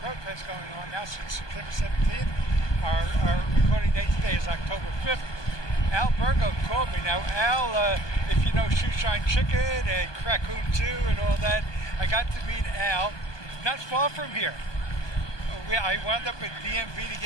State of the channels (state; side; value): late; right; 1.2 ms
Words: protest going on now since September 17th. Our recording date today is October 5th. Albergo called me. Now, Al, if you know Shoeshine Chicken and Raccoon 2 and all that, I got to meet Al not far from here. I wound up at DMV to